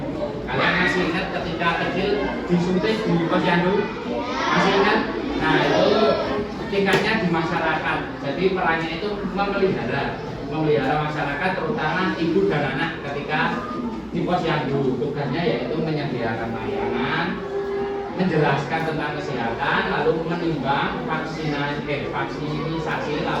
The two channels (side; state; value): both; identical; correlation 1.00